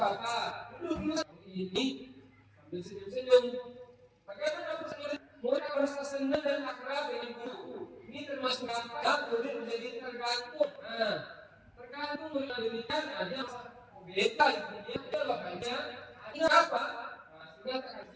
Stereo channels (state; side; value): identical; both; correlation 1.00